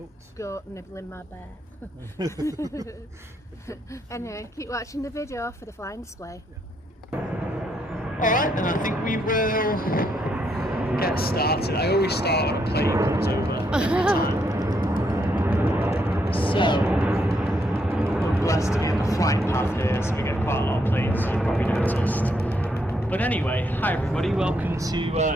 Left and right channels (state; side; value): normal; both; correlation 0.76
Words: goat nibbling my bear. Anyway, keep watching the video for the flying display. Alright, and I think we will get started. I always start when a plane comes over every time. So, we're blessed to be in the flight path here, so we get quite a lot of planes, as you probably noticed. But anyway, hi everybody, welcome